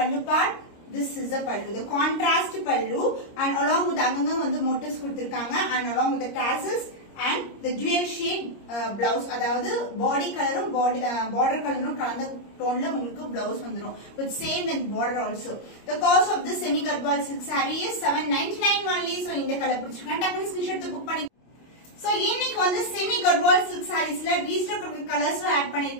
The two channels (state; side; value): late; right; 26 ms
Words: pallu part. This is the pallu, the contrast pallu, and along with அங்கங்க வந்து motifs கொடுத்திருக்காங்க and along with the tassels and the dual shade blouse. அதாவது body கலரும் border கலரும் கலந்த டோன்ல உங்களுக்கு blouse வந்துரும் with same and border also. The cost of this semi cut ball silk saree is 799 only. So இந்த கலர் பிடிச்சிருக்கேன் டக்குனு ஸ்கிரீன்ஷாட் எடுத்து புக் பண்ணி. சோ இன்னைக்கு வந்து செமி கட்வால் சில்க் சாரீஸ்ல ரீஸ்டாக் கலர்ஸ் ஆட்